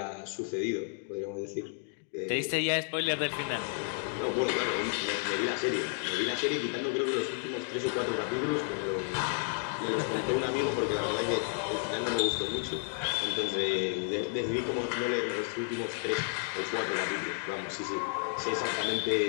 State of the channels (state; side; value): silent; right; 57 dB below the other